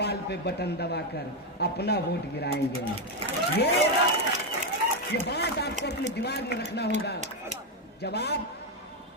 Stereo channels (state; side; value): normal; both; correlation 0.05